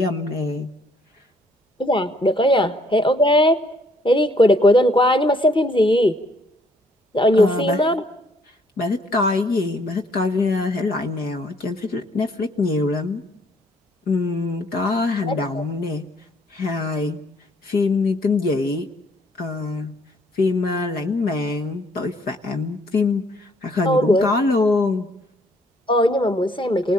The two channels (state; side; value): normal; both; correlation 0.65